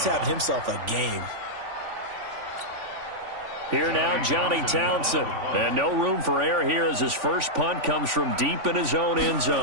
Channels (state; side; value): late; left; 3.5 ms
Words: having himself a game. Here now, Johnny Townsend. And no room for error here as his first punt comes from deep in his own end